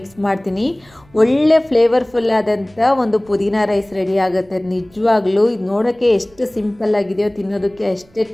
ಮಾಡ್ತೀನಿ. ಒಳ್ಳೆ ಫ್ಲೇವರ್ಫುಲ್ ಆದಂಥ ಒಂದು ಪುದೀನ ರೈಸ್ ರೆಡಿ ಆಗುತ್ತೆ. ನಿಜವಾಗ್ಲೂ ಇದು ನೋಡೋಕ್ಕೆ ಎಷ್ಟು ಸಿಂಪಲ್ ಆಗಿದೆಯೋ ತಿನ್ನೋದಕ್ಕೆ ಅಷ್ಟೇ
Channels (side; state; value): right; noise; rumble, 29 dB below the sound